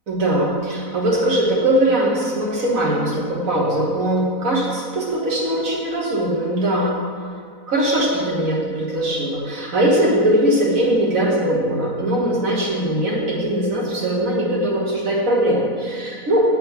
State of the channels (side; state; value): left; late; 4.0 ms